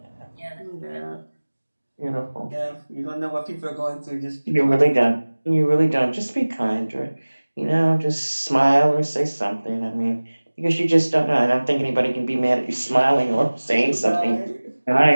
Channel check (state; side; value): inverted; both; correlation -1.00